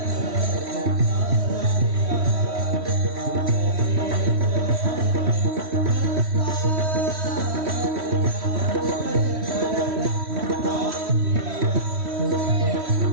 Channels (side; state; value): left; late; 3.1 ms